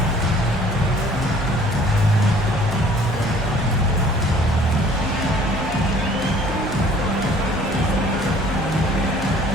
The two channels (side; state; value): both; normal; correlation 0.54